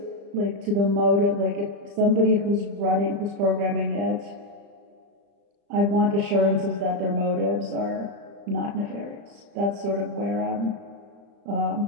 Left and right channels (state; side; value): late; left; 35 ms